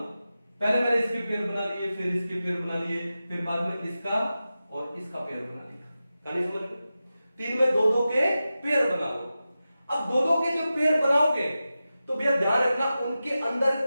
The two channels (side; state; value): both; inverted; correlation -0.93